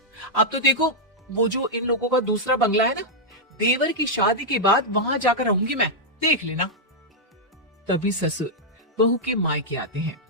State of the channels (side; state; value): both; normal; correlation -0.06